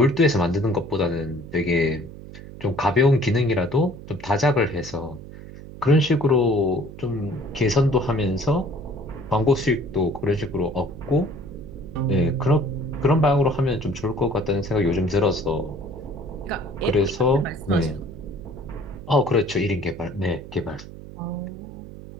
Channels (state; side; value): noise; right; hum, 14 dB below the sound